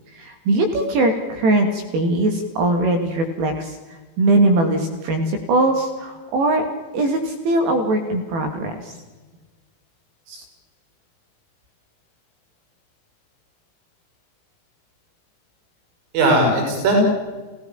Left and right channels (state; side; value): late; left; 18 ms